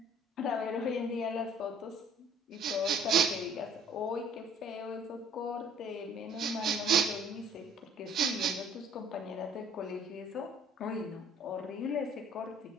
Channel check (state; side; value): normal; both; correlation 0.56